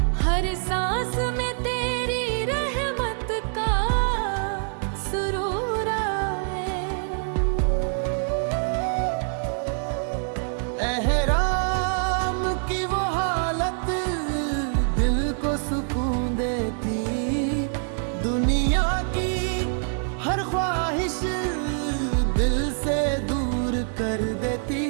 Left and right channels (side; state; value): left; silent; digital silence